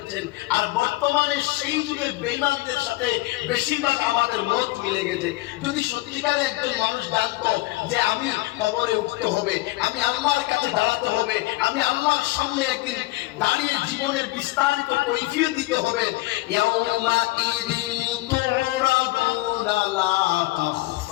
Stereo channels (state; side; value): quieter; right; 20.1 dB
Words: আর বর্তমানে সেই যুগের বেঈমানদের সাথে বেশিরভাগ আমাদের মত মিলে গেছে। যদি সত্যিকারে একজন মানুষ জানতো যে আমি কবরে উঠতে হবে, আমি আল্লাহর কাছে দাঁড়াতে হবে, আমি আল্লাহর সামনে একদিন দাঁড়িয়ে জীবনের বিস্তারিত কৈফিয়ত দিতে হবে, ইয়াউমা ইদিন তুরাদুনা লা